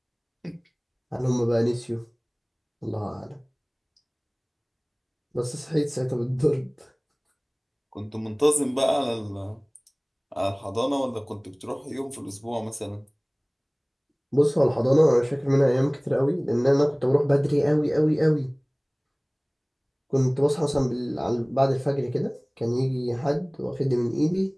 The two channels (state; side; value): identical; both; correlation 1.00